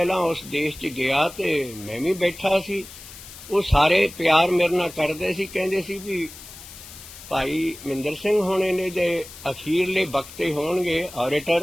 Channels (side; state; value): left; noise; hiss, 16 dB below the sound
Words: ਉਸ ਦੇਸ਼ 'ਚ ਗਿਆ ਤੇ ਮੈਂ ਵੀ ਬੈਠਾ ਸੀ। ਉਹ ਸਾਰੇ ਪਿਆਰ ਮੇਰੇ ਨਾਲ ਕਰਦੇ ਸੀ, ਕਹਿੰਦੇ ਸੀ ਵੀ ਭਾਈ ਮਹਿੰਦਰ ਸਿੰਘ ਹੋਣੇ ਨੇ ਦੇ ਅਖੀਰਲੇ ਵਕਤੇ ਹੋਣਗੇ